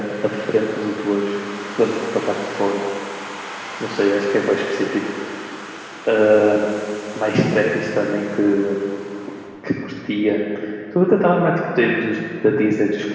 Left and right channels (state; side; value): identical; both; correlation 1.00